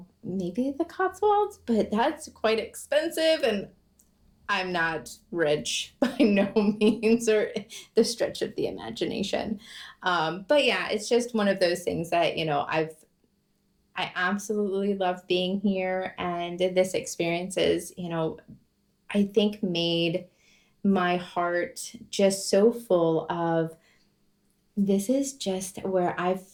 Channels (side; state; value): both; identical; correlation 1.00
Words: the Cotswolds, but that's quite expensive, and I'm not rich by no means, or the stretch of the imagination. But yeah, it's just one of those things that, I absolutely love being here. And this experience is, I think made my heart just so full of, this is just where I've